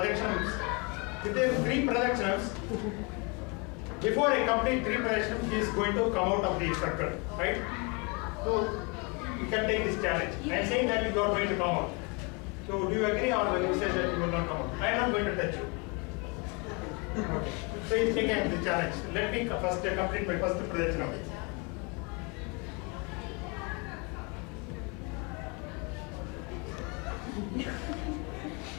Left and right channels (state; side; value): quieter; right; 31.3 dB